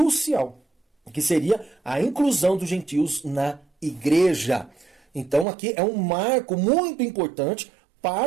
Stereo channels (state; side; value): drops out; left; at 5.5 s